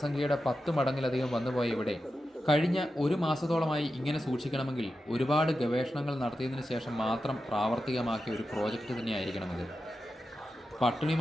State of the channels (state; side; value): normal; both; correlation 0.91